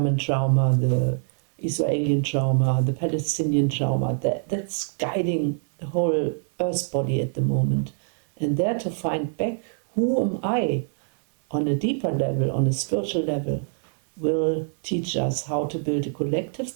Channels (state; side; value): silent; left; digital silence